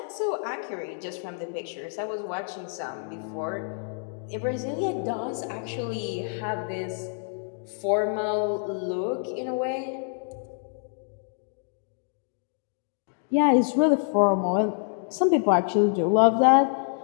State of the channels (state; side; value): silent; right; 60 dB below the other